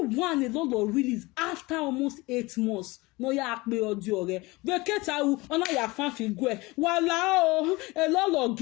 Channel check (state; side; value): quieter; right; 22.7 dB